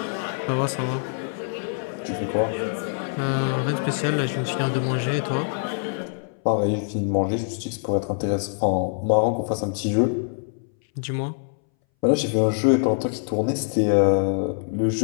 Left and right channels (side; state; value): right; silent; 61 dB below the other